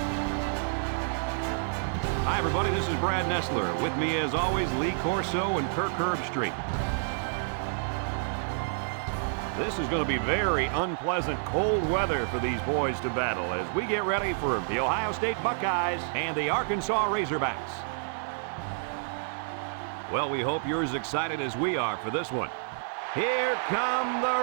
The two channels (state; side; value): silent; left; digital silence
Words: Hi, everybody. This is Brad Nessler. With me, as always, Lee Corso and Kirk Herbstreit. This is going to be very unpleasant, cold weather for these boys to battle as we get ready for the Ohio State Buckeyes and the Arkansas Razorbacks. Well, we hope you're as excited as we are for this one. Here come